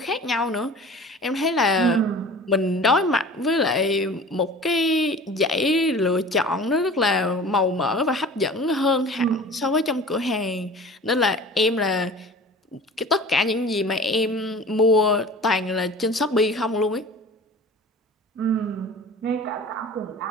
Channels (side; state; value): both; normal; correlation 0.41